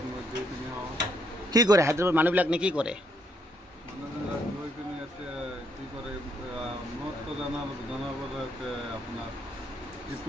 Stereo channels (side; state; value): both; normal; correlation 0.73